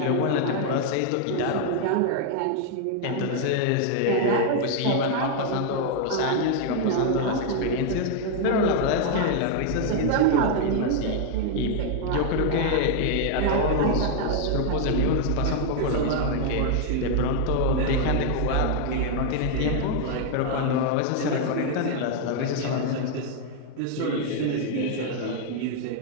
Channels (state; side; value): different; both; correlation 0.00